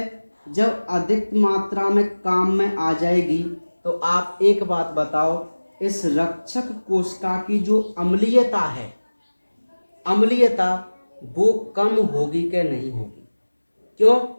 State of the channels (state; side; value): inverted; both; correlation -1.00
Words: जब अधिक मात्रा में काम में आ जाएगी तो आप एक बात बताओ, इस रक्षक कोशिका की जो अम्लीयता है, अम्लीयता वो कम होगी कि नहीं होगी? क्यों?